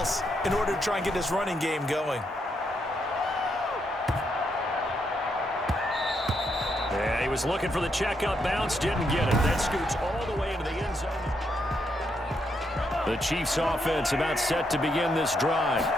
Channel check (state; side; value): normal; both; correlation 0.78